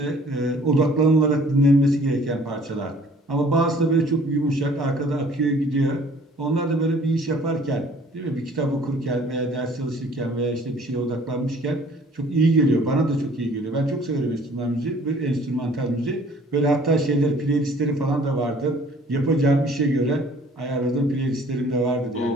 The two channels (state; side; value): normal; both; correlation 0.54